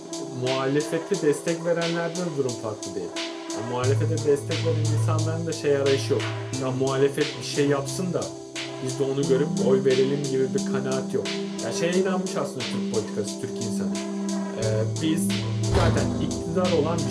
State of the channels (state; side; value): identical; both; correlation 1.00